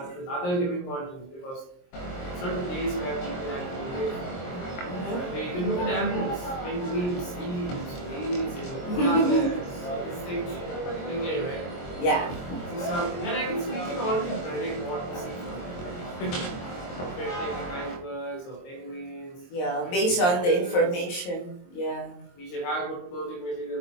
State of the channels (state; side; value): late; right; 23 ms